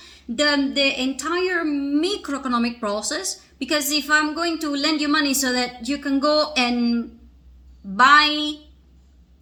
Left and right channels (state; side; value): identical; both; correlation 1.00